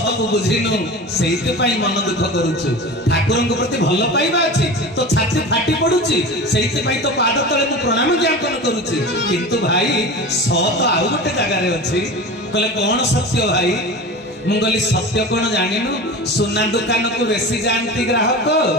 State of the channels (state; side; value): normal; both; correlation 0.31